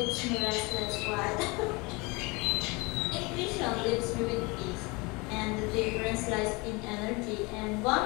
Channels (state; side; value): quieter; right; 26.6 dB